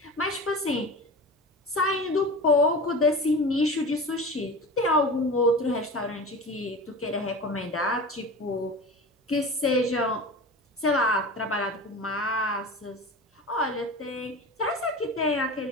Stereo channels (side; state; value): both; normal; correlation 0.32